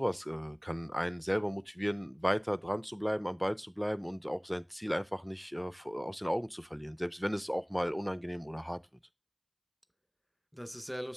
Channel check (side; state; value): both; identical; correlation 1.00